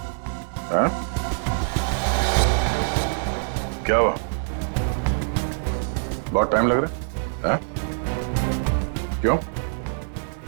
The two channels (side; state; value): left; silent; digital silence